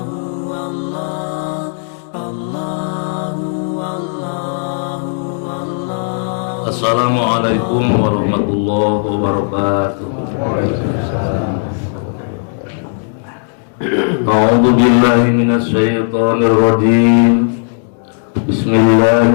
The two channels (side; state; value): right; silent; digital silence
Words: warahmatullahi wabarakatuh. A'udzu billahi minasy syaithanir rajim.